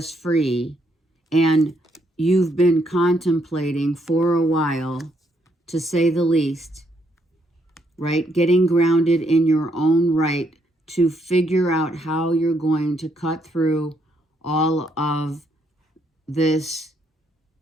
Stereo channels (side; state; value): both; normal; correlation 0.73